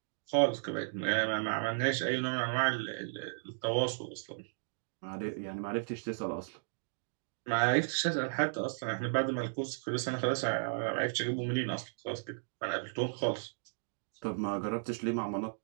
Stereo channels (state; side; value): silent; left; digital silence